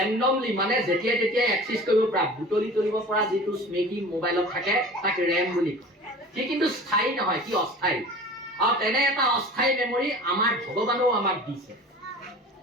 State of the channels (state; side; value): normal; both; correlation 0.40